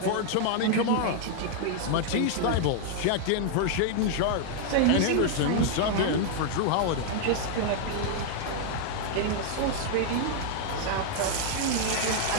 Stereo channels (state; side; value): different; both; correlation 0.00